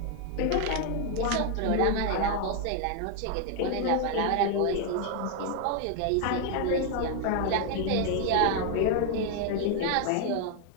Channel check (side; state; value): both; different; correlation 0.00